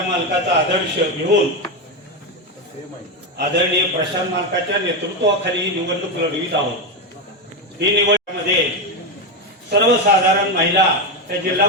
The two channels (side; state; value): both; normal; correlation 0.10